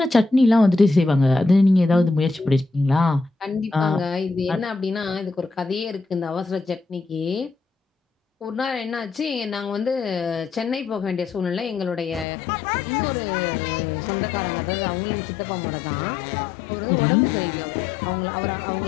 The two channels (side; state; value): right; drops out; at 12.2 s